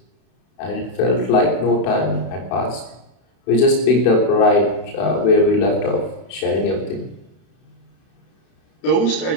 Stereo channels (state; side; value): late; right; 31 ms